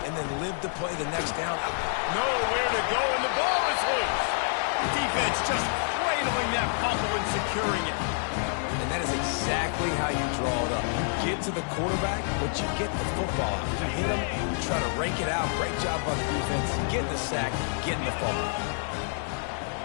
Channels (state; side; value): silent; right; 59 dB below the other